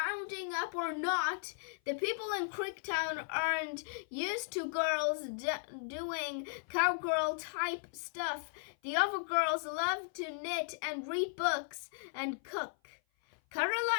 up or not. The people in Creektown aren't used to girls doing cowgirl-type stuff. The other girls love to knit and read books and cook. Kara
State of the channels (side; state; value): right; silent; 54 dB below the other